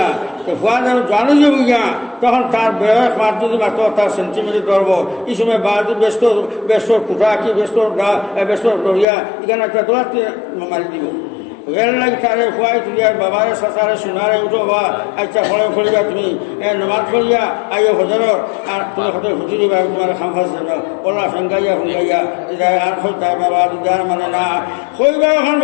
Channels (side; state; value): right; drops out; at 9.1 s